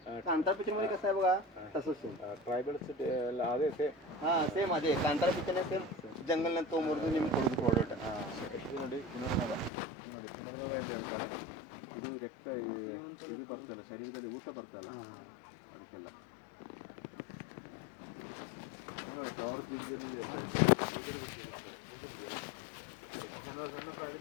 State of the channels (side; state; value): right; drops out; at 9.7 s